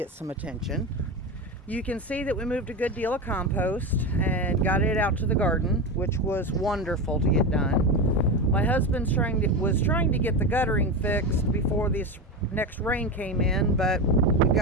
some attention. You can see that we moved a good deal of compost and got it out to the garden, which was wonderful to get done. My husband was trying to get the guttering fixed before this next rain came in, but we've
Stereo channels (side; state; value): both; normal; correlation 0.19